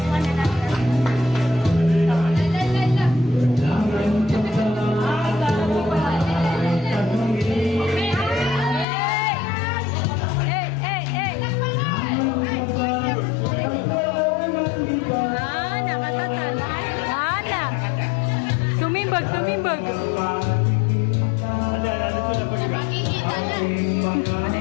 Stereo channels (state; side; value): drops out; right; at 8.8 s